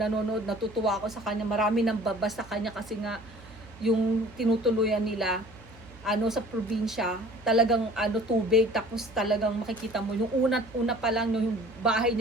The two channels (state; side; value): noise; right; hum, 21 dB below the sound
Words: natutuwa ako sa kanya. Marami nang babas sa kanya kasi nga yung tinutuluyan nila sa probinsya, talagang tubig, tapos talagang makikita mo yung una pa lang yung bahay